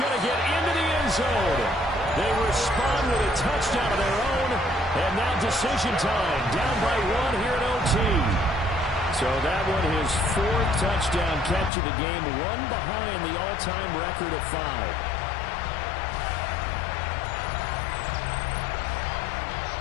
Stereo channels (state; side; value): drops out; right; at 11.7 s